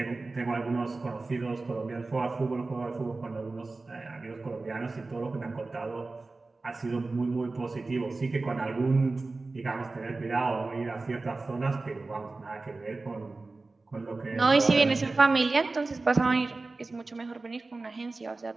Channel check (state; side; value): quieter; left; 3.5 dB